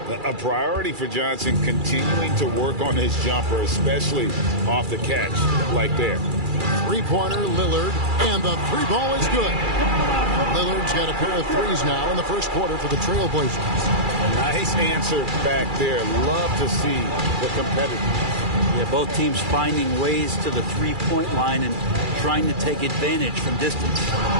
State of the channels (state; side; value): late; left; 2.4 ms